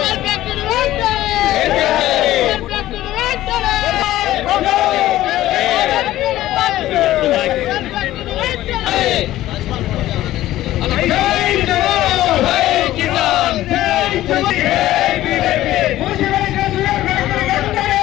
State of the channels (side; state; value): right; quieter; 14.8 dB